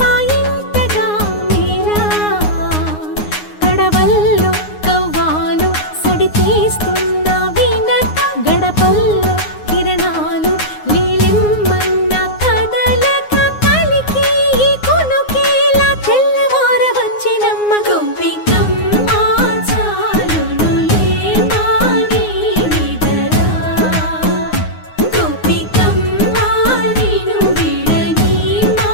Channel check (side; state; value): right; late; 9.6 ms